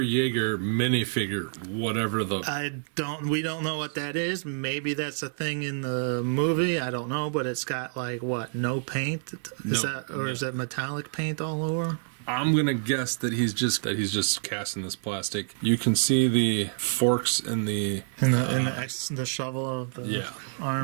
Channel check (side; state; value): left; silent; digital silence